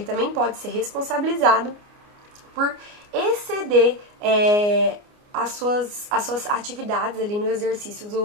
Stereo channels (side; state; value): left; late; 29 ms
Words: pode ser responsabilizado por exceder as suas atividades ali no exercício